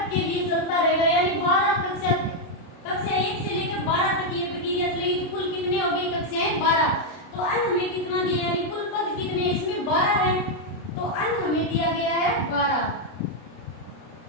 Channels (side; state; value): right; late; 30 ms